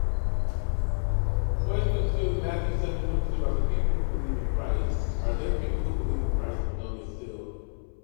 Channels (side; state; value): right; silent; 59 dB below the other